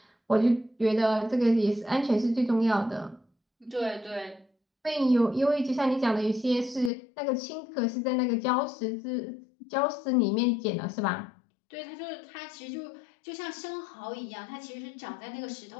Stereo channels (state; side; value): drops out; right; at 6.9 s